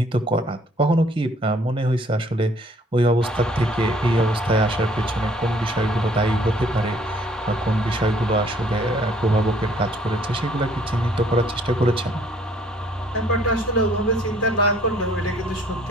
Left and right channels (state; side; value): normal; both; correlation 0.60